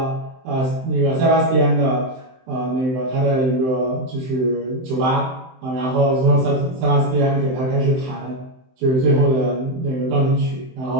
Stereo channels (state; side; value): late; left; 23 ms